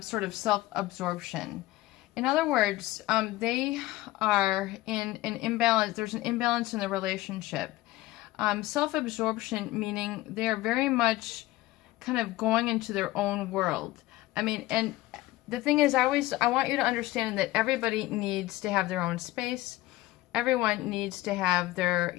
of self-absorption. In other words, they are in an imbalance. There's an imbalance in the relationship. Self-absorption meaning they're very much kind of going into their own world. I mean, and the thing is, I want you to understand that everybody needs to have their own space. Everyone needs to have their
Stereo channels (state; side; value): quieter; right; 17.5 dB